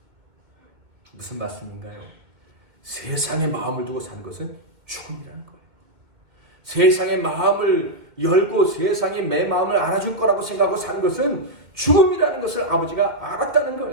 무슨 말씀인가요? 세상의 마음을 두고 사는 것은 죽음이라는 거예요. 세상의 마음을 열고 세상이 내 마음을 알아줄 거라고 생각하고 사는 것은 죽음이라는 것을 아버지가 알았다는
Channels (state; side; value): late; left; 2.3 ms